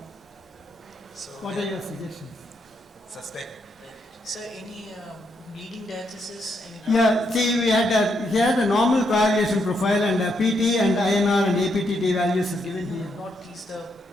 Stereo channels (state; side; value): normal; both; correlation 0.78